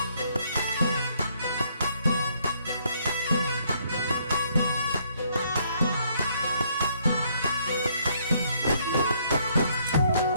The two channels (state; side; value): inverted; both; correlation -0.68